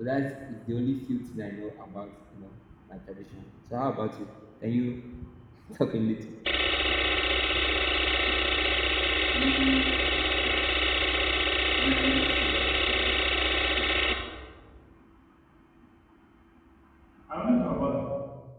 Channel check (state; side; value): identical; both; correlation 1.00